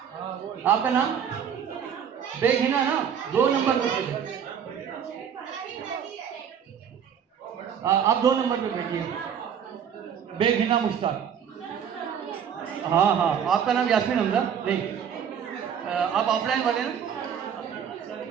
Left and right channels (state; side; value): quieter; left; 8.1 dB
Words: आपका नाम बेगहिना ना, 2 नंबर पे, आप 2 नंबर पे बैठिए, बेगहिना मुश्ताक। हाँ हाँ, आपका नाम यास्मीन हमजा नहीं, आप ऑफलाइन वाले ना,